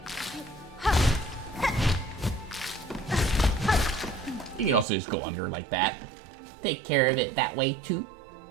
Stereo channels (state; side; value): drops out; left; at 4.9 s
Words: You can also just go under like that. Take care of it that way too.